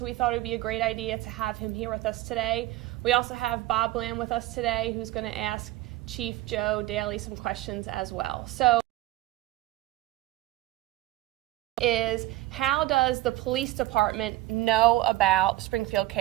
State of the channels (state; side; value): quieter; left; 16.7 dB